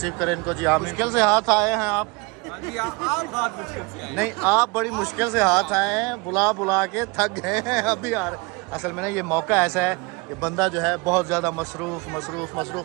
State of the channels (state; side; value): quieter; left; 27.3 dB